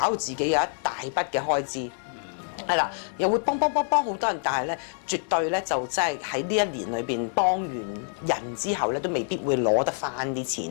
到自己有一大筆嘅開支。係啦，又會幫好多人，但係咧絕對咧就真係喺呢一年裏邊幫完人之後咧，都未必會攞得翻啲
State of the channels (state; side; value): silent; right; 61 dB below the other